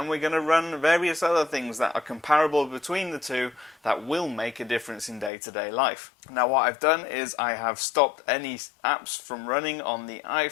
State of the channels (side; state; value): right; drops out; at 5.3 s